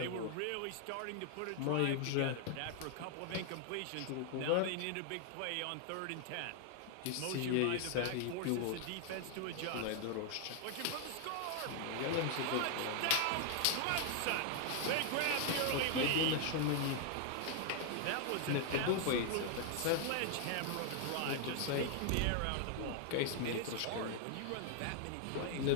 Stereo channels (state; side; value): different; both; correlation 0.00